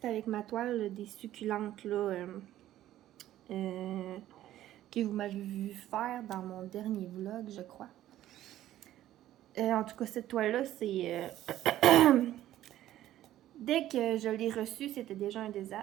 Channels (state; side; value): quieter; left; 13.3 dB